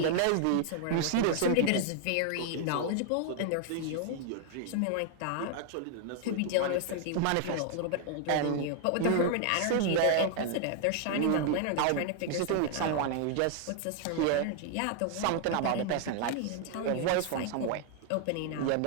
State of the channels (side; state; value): both; different; correlation 0.00